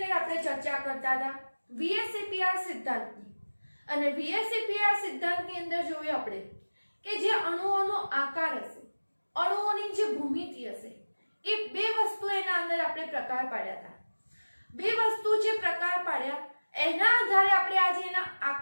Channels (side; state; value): both; inverted; correlation -1.00